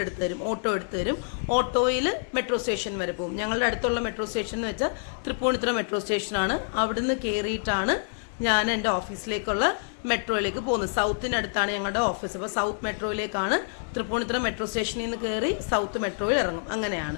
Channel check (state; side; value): silent; right; digital silence